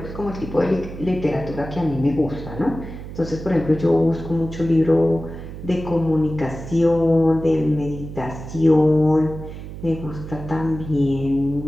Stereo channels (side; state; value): right; noise; hum, 11 dB below the sound